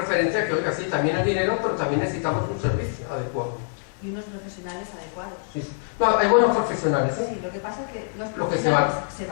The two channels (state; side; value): silent; right; digital silence